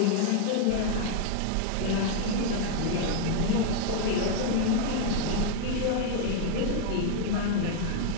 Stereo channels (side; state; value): both; different; correlation 0.00